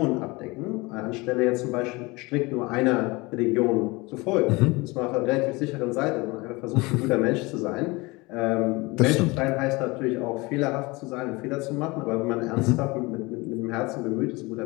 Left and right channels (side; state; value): right; quieter; 24.2 dB